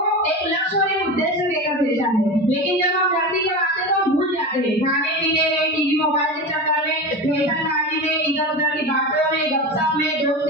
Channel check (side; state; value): both; normal; correlation 0.26